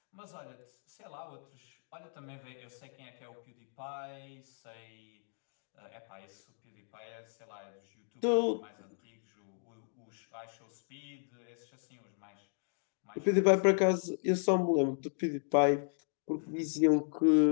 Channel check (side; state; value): right; silent; 54 dB below the other